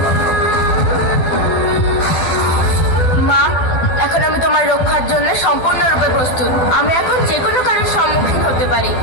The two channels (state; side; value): late; right; 12 ms